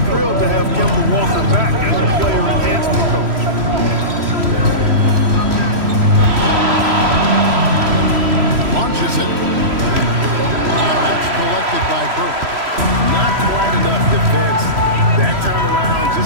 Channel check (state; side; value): late; left; 3.0 ms